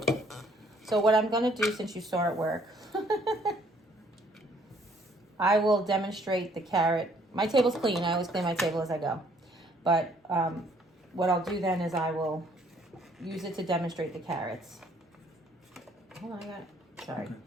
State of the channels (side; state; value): both; normal; correlation 0.63